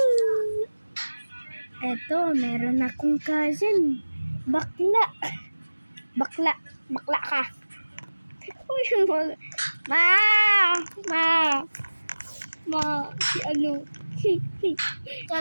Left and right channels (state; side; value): inverted; both; correlation -1.00